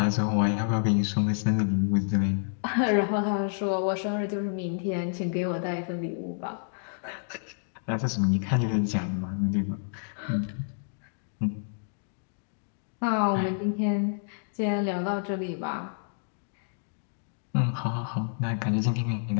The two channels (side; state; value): right; silent; digital silence